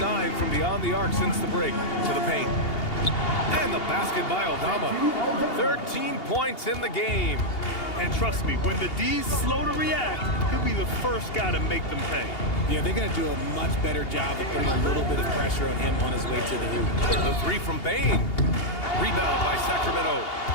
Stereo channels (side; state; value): right; late; 2.8 ms